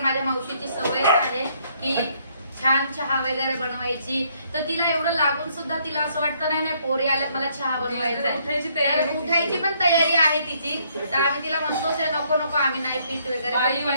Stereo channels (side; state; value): both; inverted; correlation -0.68